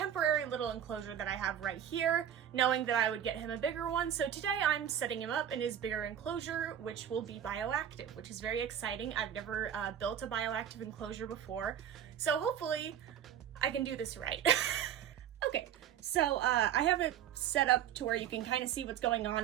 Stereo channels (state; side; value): quieter; left; 9.7 dB